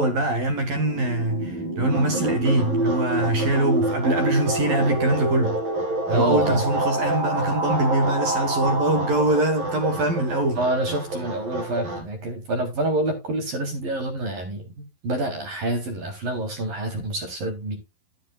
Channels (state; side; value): late; left; 11 ms